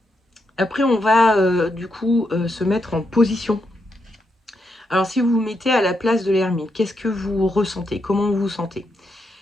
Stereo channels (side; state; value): both; normal; correlation 0.82